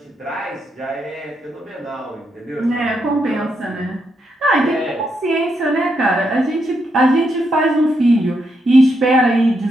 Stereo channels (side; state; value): both; normal; correlation 0.80